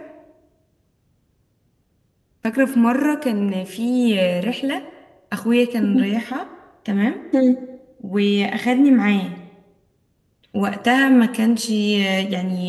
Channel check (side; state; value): both; identical; correlation 1.00